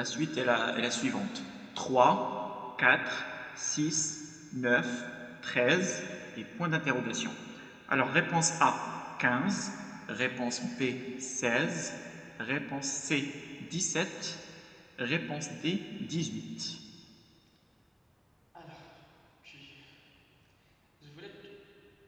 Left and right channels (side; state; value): both; identical; correlation 1.00